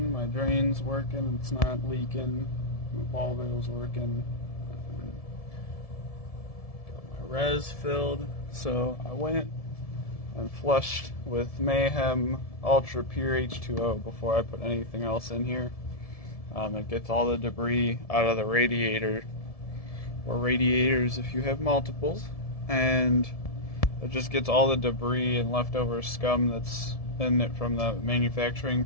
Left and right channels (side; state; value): right; late; 1.7 ms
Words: my drain's working, it's not leaking, my ball valve's working, got my res filled, so I went and flushed with Mayhem Ultra Pure H2O before I put anything else in here. It gets all the debris out of the radiator, or radiators if you have multiples, and it just gets all the debris and leftover scum that's in it from the manufacturing